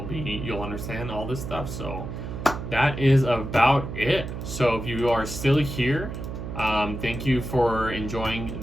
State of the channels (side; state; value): right; noise; hum, 7 dB below the sound